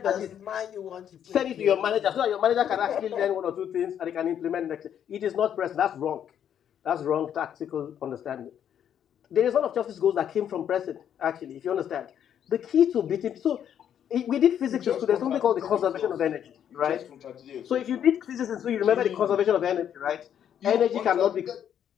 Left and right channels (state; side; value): quieter; right; 9.4 dB